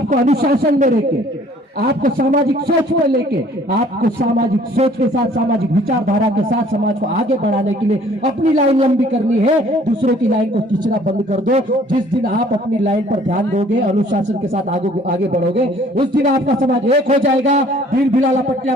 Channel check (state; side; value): normal; both; correlation 0.56